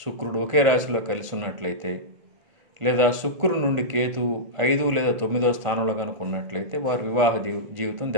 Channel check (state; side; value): late; left; 1.5 ms